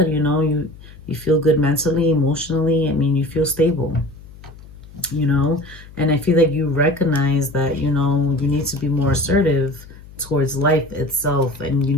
You know, you feel good mentally, emotionally. I mean, you feel stable, you know. And I feel like you recognize that, you know, you need to be more assertive towards life itself. And you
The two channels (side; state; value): left; noise; hum, 19 dB below the sound